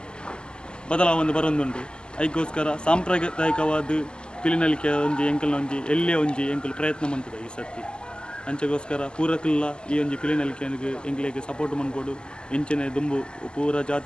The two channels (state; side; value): late; right; 0.050 ms